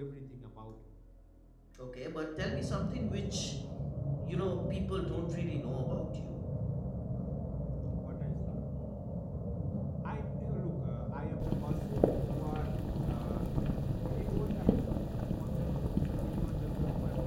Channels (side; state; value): both; identical; correlation 1.00